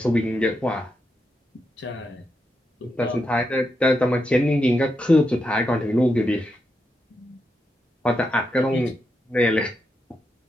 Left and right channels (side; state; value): both; normal; correlation 0.84